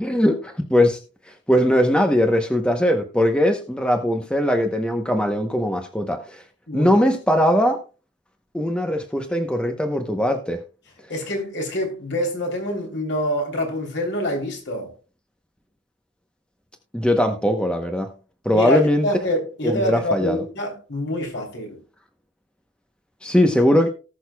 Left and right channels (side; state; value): both; normal; correlation 0.71